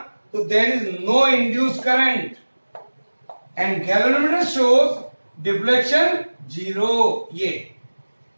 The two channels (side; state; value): both; inverted; correlation -1.00